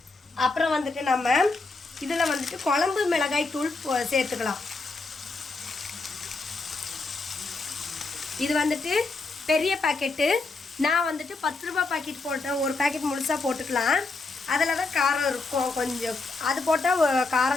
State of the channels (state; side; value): quieter; right; 3.7 dB